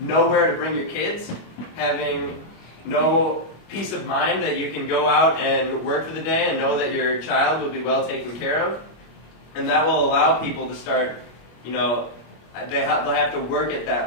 to bring your kids, having no peace of mind that you can go out and work for the day and know that your child will be well taken care of. And that will allow people to start, they'll have to work at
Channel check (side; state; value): right; late; 25 ms